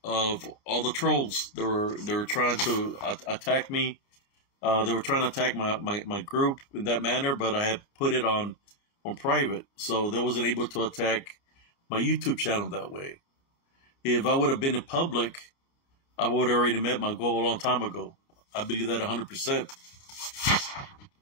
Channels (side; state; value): right; late; 30 ms